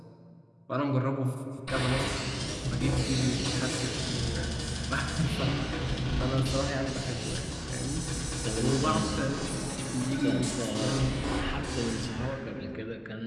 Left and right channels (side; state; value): both; identical; correlation 1.00